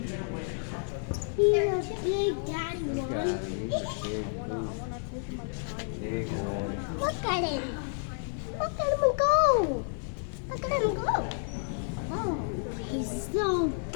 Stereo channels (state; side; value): silent; right; 58 dB below the other